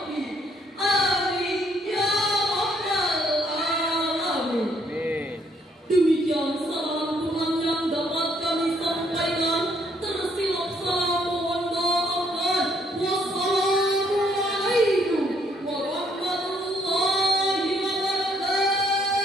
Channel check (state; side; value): normal; both; correlation 0.68